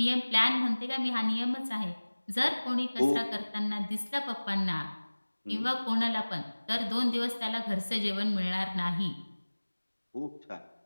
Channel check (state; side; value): inverted; both; correlation -1.00